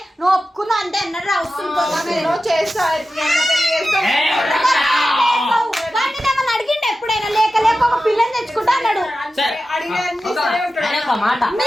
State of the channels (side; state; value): both; normal; correlation 0.93